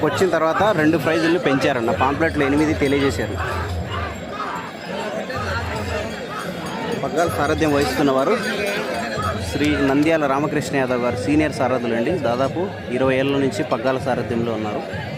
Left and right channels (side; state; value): both; identical; correlation 1.00